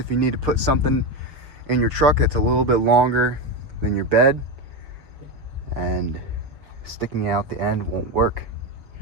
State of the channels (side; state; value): left; late; 6.4 ms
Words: you need to put something in your truck that's a little bit longer than your bed, and sticking out the end won't work.